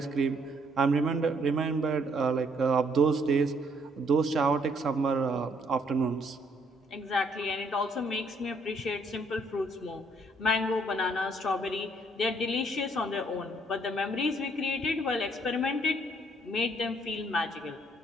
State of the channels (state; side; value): normal; both; correlation 0.67